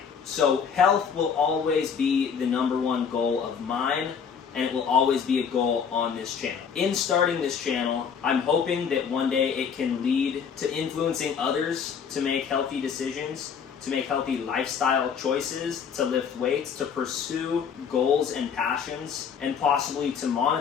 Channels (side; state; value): right; quieter; 6.8 dB